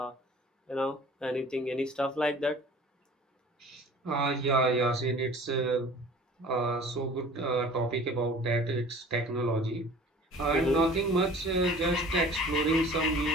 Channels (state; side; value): normal; both; correlation 0.46